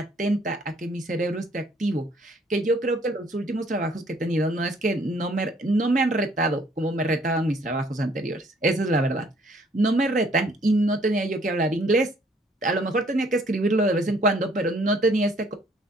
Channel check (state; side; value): normal; both; correlation 0.62